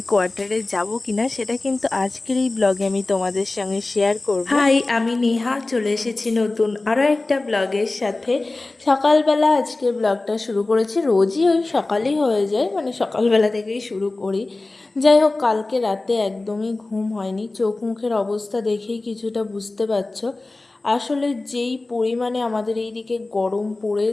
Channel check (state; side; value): quieter; right; 3.1 dB